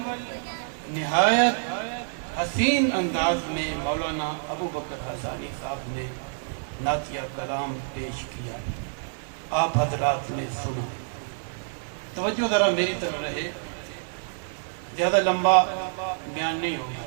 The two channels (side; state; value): left; silent; digital silence